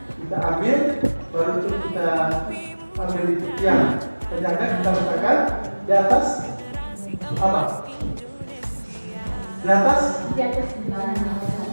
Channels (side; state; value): both; inverted; correlation -1.00